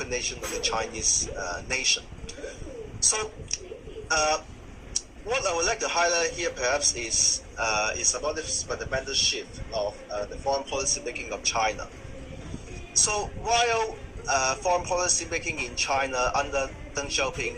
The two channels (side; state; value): both; identical; correlation 1.00